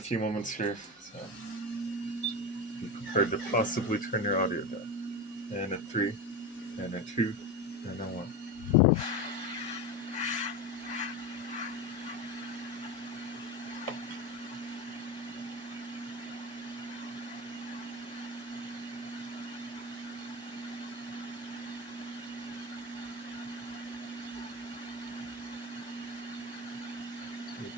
moments here, so be prepared to possibly turn your audio down. And a 3, and a 2, and a 1.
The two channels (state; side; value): normal; both; correlation 0.22